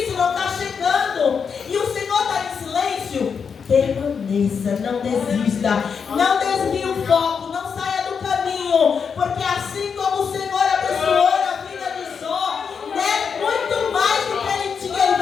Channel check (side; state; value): right; quieter; 6.3 dB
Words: não está chegando. E o Senhor está em silêncio. Permaneça, não desista. Não desvie o foco, não saia do caminho. Porque assim como o Senhor abençoou a vida de Jó, né, muito mais do que ele tinha, Ele